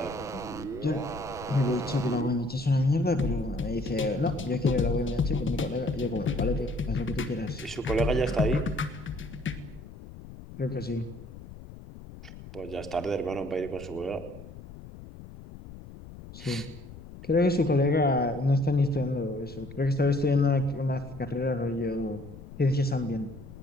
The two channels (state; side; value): noise; left; rumble, 15 dB below the sound